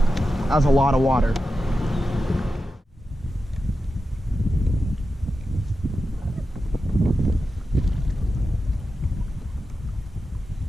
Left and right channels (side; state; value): both; normal; correlation 0.91